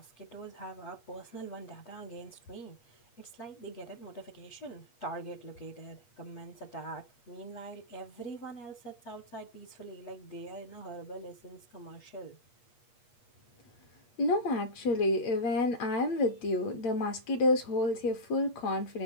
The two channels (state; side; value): late; right; 8.4 ms